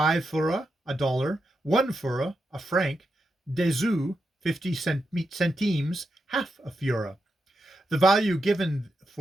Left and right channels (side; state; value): both; normal; correlation 0.86